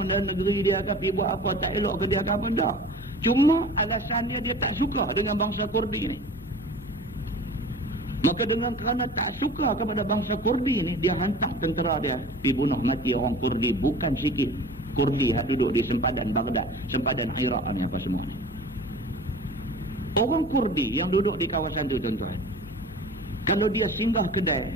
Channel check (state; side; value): normal; both; correlation 0.41